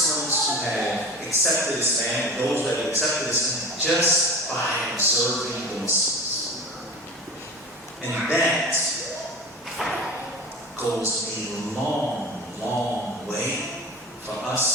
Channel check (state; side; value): normal; both; correlation 0.34